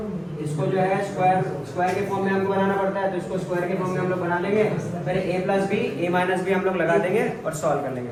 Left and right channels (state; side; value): identical; both; correlation 1.00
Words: इसको जो है स्क्वायर के फॉर्म में हमको बनाना पड़ता है, तो इसको स्क्वायर के फॉर्म में हम लोग बना लेंगे। फिर a plus b a minus b हम लोग लगा देंगे और सॉल्व कर